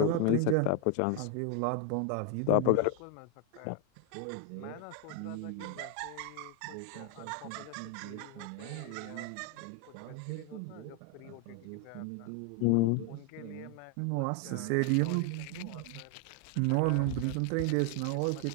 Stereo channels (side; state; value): both; different; correlation 0.01